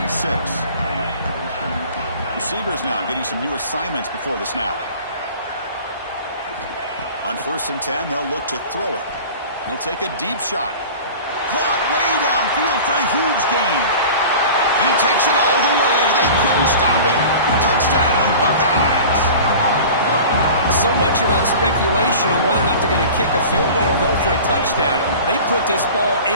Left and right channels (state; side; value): inverted; both; correlation -0.39